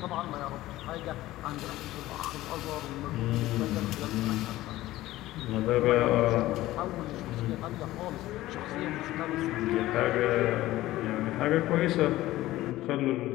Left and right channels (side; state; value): right; quieter; 16.3 dB